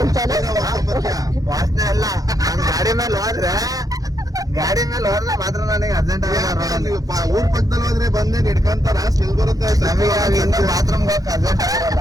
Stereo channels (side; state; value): left; late; 0.17 ms